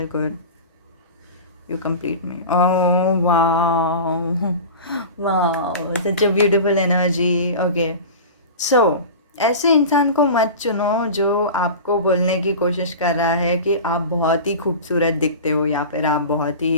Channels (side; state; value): both; inverted; correlation -0.32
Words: good, you complete me, oh wow wow, such a beautiful energy. Okay, so ऐसे इंसान को मत चुनो जो आपको बोलने की कोशिश कर रहा है कि आप बहुत ही खूबसूरत दिखते हो, या फिर आप बहुत